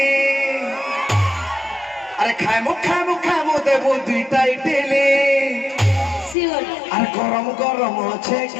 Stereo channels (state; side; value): drops out; right; at 6.4 s